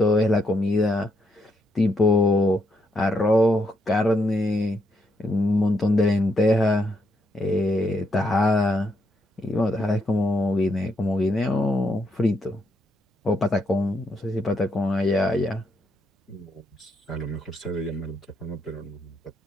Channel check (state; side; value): normal; both; correlation 0.77